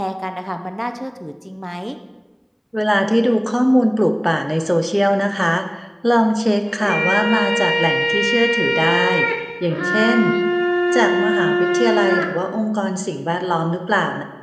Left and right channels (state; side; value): identical; both; correlation 1.00